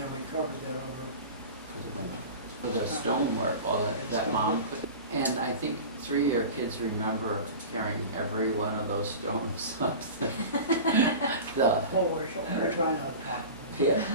we covered that over. For the window. For the stonework, all that mom put. And I think 3 of your kids remember carrying every one of those stones up the. We're trying not to pop. Yeah,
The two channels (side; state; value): both; inverted; correlation -0.33